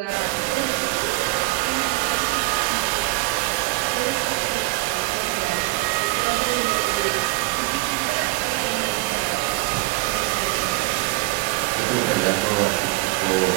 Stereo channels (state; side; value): quieter; left; 21.0 dB